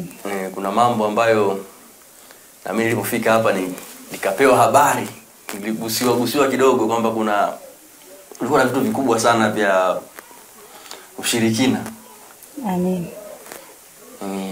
Kuna mambo ambayo na mimi nilipofika hapa nikapewa habari, niligusiwa kidogo kwamba kulikuwa na vitu vikubwa sana vya ushirikina.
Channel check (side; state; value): both; identical; correlation 1.00